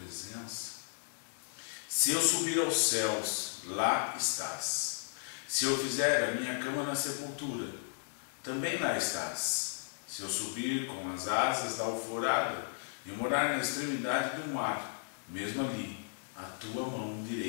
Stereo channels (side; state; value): right; silent; digital silence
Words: Se eu subir aos céus, lá estás. Se eu fizer a minha cama na sepultura, também lá estás. Se eu subir com as asas da alvorada e morar na extremidade do mar, mesmo ali, a Tua mão